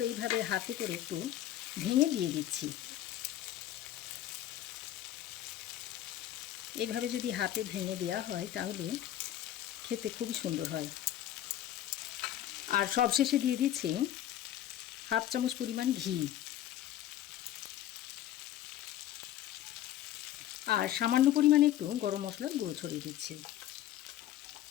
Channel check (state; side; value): quieter; right; 12.4 dB